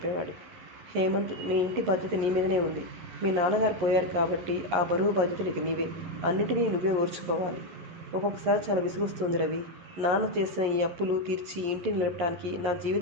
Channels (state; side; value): late; left; 11 ms